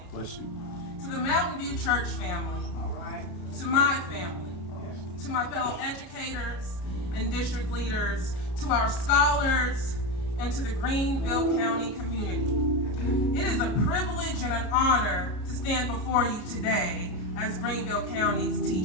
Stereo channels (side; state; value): right; late; 34 ms